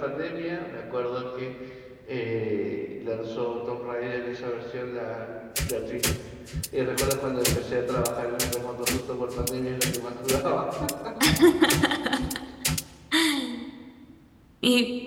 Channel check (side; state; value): both; identical; correlation 1.00